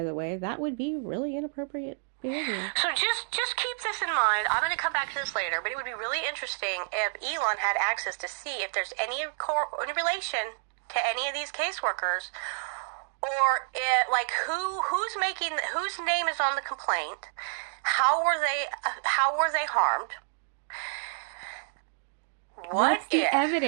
the way, that would be really inappropriate behavior. So just keep this in mind. I'm going to come back to this later, but it would be really interesting if Elon had access to see if there's any relation to any of these caseworkers, or whose name is on the complaint, how were they harmed? What's the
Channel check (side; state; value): left; silent; digital silence